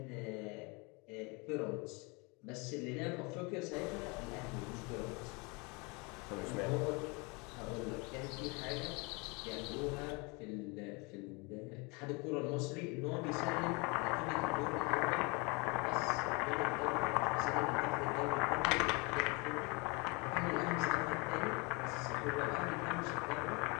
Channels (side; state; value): right; quieter; 29.0 dB